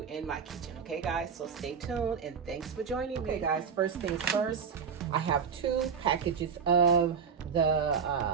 in my kitchen. Okay, guys, so stay tuned and thanks for joining me. Okay, guys, first things first, I have 2 packages of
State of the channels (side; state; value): left; quieter; 6.4 dB